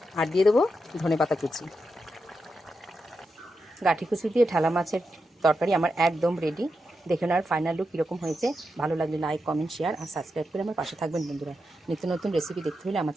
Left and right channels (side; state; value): both; normal; correlation 0.87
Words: আর দিয়ে দেবো ধনেপাতা কুচি। গাঠি কুচি দিয়ে ঢালা মাছের তরকারি আমার একদম রেডি। দেখে নেওয়ার ফাইনাল লুক কীরকম হয়েছে। ভালো লাগলে লাইক, কমেন্ট, শেয়ার আর সাবস্ক্রাইব করে আমার পাশে থাকবেন বন্ধুরা। নিত্য নতুন রেসিপি দেখতে হলে আমার